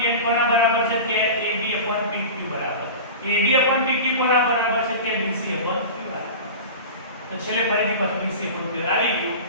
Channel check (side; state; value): both; inverted; correlation -0.32